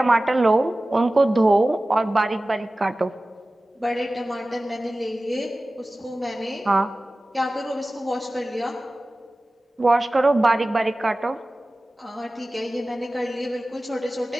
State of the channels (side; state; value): both; normal; correlation 0.97